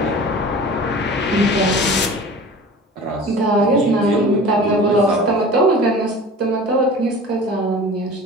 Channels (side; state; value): both; normal; correlation 0.39